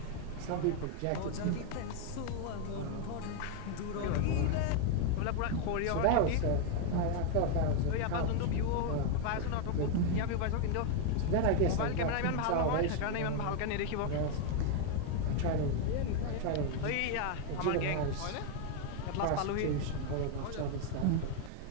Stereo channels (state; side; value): different; both; correlation 0.01